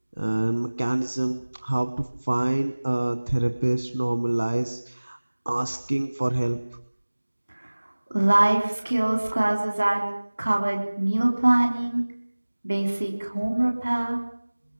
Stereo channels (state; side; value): inverted; both; correlation -1.00